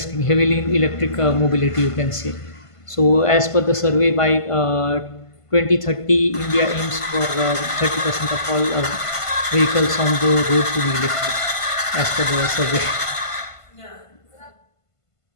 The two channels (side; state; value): right; late; 1.5 ms